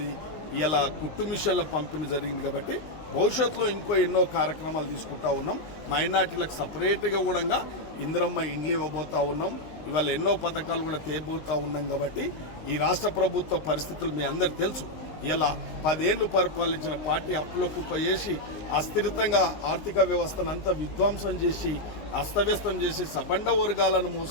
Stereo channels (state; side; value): late; right; 19 ms